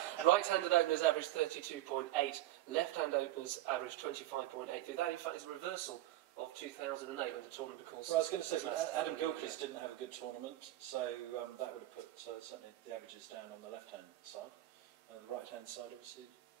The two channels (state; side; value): quieter; left; 15.3 dB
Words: Right-handed openers averaged 32.8. Left-hand openers averaged 25.8. That, in fact, is a reversal of 2008 when the tournament, of course... Well, I was going to say, Adam Gilchrist didn't have a good tournament, so that would have put certainly the averages down on the left-hand side. And the right-hand side, obviously,